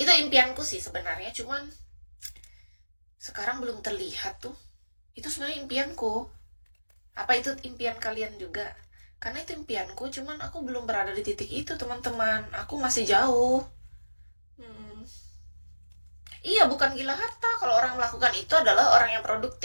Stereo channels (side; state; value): both; inverted; correlation -1.00